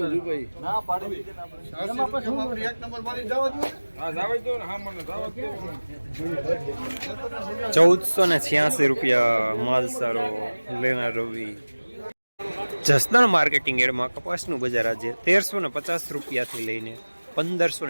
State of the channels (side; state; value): both; inverted; correlation -1.00